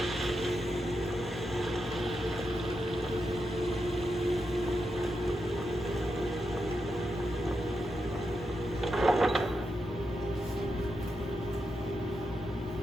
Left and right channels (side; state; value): both; normal; correlation 0.86